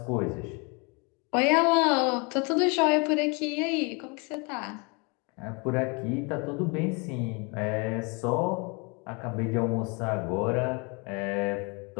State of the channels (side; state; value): right; quieter; 31.0 dB